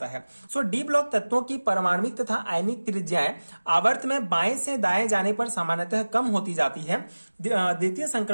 है। सो डी ब्लॉक तत्वों की परमाणविक तथा आयनिक त्रिज्याएं आवर्त में बाएं से दाएं जाने पर सामान्यतः कम होती जाती है। द्वितीय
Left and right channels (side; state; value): both; inverted; correlation -1.00